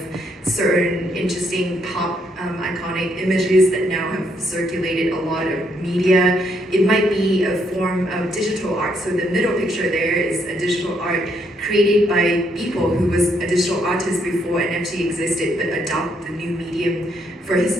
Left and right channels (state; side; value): normal; both; correlation 0.73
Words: certain interesting pop iconic images that now have circulated a lot of media. It might be a form of digital art. So the middle picture there is a digital art created by people who was a digital artist before NFT existed, but adopt the new medium for his